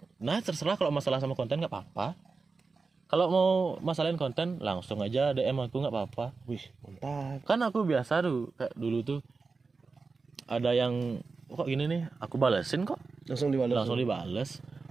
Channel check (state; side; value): quieter; left; 4.3 dB